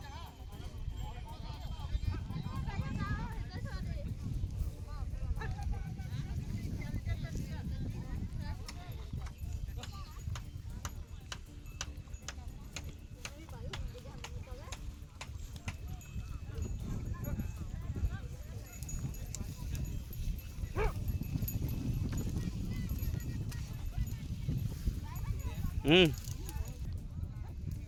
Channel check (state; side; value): identical; both; correlation 1.00